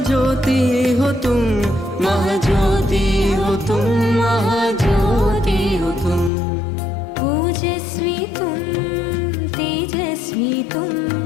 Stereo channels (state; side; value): drops out; right; at 6.3 s